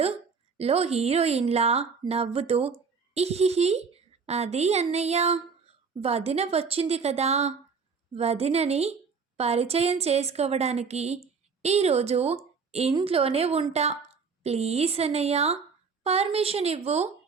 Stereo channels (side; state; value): left; quieter; 5.4 dB